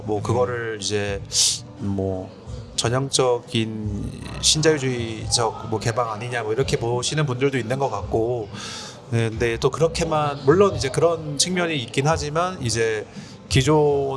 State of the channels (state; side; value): identical; both; correlation 1.00